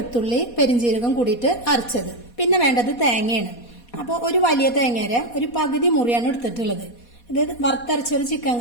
പെരിഞ്ജീരകം കൂടിയിട്ട് അരച്ചത്. പിന്നെ വേണ്ടത് തേങ്ങയാണ്. അപ്പോൾ ഒരു വലിയ തേങ്ങയുടെ ഒരു പകുതി മുറിയാണ് എടുത്തിട്ടുള്ളത്. ഇത് വറുത്തരച്ചൊരു ചിക്കൻ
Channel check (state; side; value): late; right; 4.2 ms